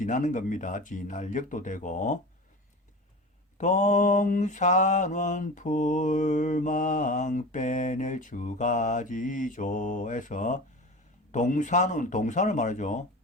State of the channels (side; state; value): both; normal; correlation 0.32